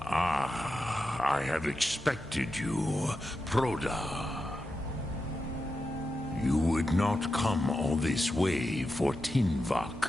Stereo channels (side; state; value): both; normal; correlation 0.89